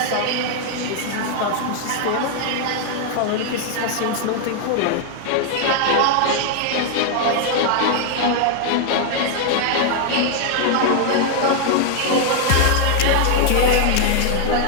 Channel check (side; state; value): both; different; correlation 0.00